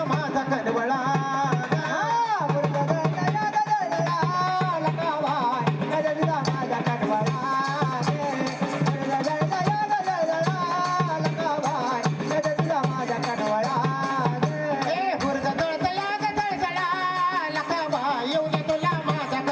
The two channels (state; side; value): identical; both; correlation 1.00